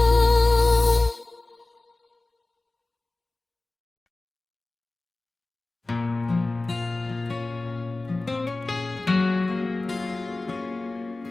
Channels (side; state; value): right; quieter; 3.0 dB